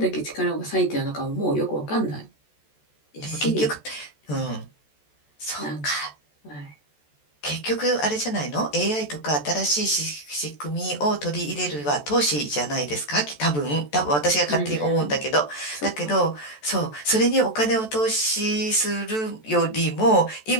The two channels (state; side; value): late; right; 14 ms